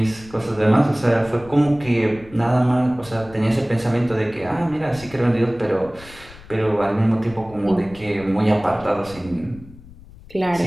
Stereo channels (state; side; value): noise; left; rumble, 20 dB below the sound